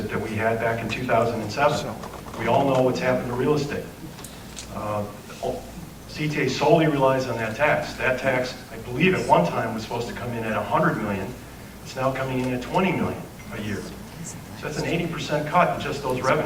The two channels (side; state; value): both; identical; correlation 1.00